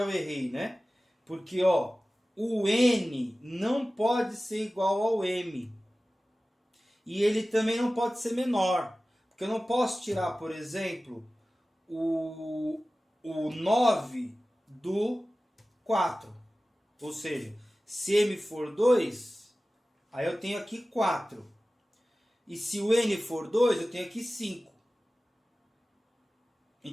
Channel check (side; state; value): both; normal; correlation 0.96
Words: eu errei, né? Porque, ó, o N não pode ser igual ao M. E ele também não pode ser menor. Porque eu não posso tirar, por exemplo, o 9 do 4. Ou seja, se M for 2, aí eu tenho aqui 4. E se o N for 2, eu tenho aqui 5.